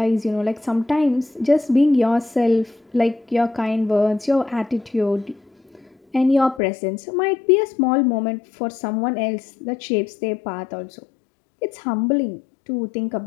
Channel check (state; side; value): drops out; right; at 6.6 s